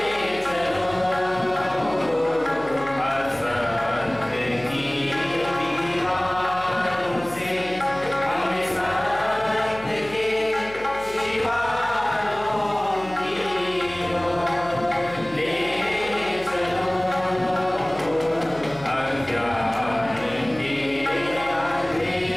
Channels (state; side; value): noise; left; hum, 20 dB below the sound